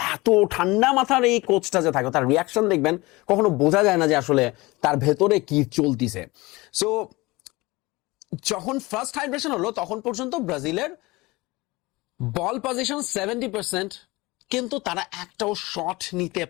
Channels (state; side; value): quieter; right; 22.1 dB